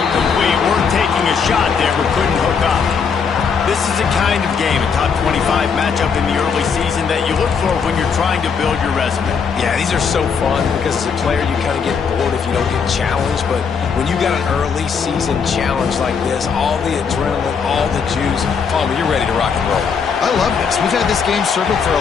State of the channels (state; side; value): quieter; right; 6.1 dB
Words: We're taking a shot there, but couldn't hook up. This is a kind of game, a top 25 matchup in the early season that you look for when you're trying to build your resume. Yeah, these are so fun because as a player you kind of get bored if you don't get challenged, but when you got an early season challenge like this, all the adrenaline, all the juice, you're ready to rock and roll. I love this. We've had this game circled for